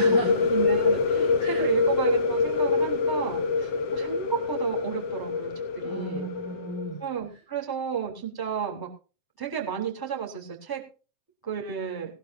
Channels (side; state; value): right; late; 7.7 ms